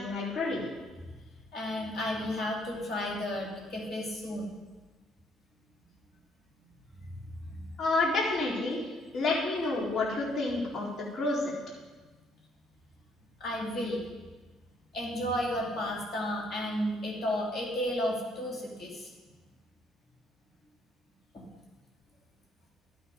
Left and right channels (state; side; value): normal; both; correlation 0.67